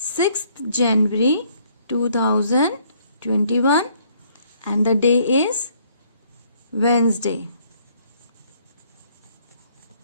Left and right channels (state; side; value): inverted; both; correlation -0.65